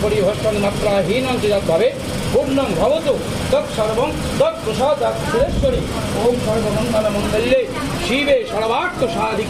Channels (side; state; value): both; identical; correlation 1.00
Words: পরিভষ্টং মাত্রাহীনং যদ্ভাবে পূর্ণং ভবতু তৎসর্বং তৎপ্রসাদাৎ সুরেশ্বরী। ওম সর্বমঙ্গলমঙ্গল্যে শিবে সর্বার্থ